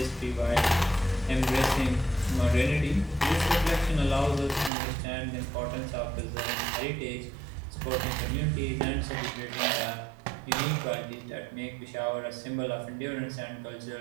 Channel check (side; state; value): left; drops out; at 4.7 s